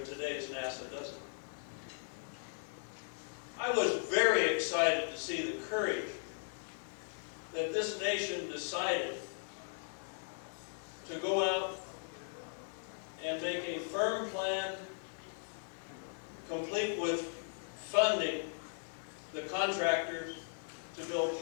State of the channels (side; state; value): right; silent; digital silence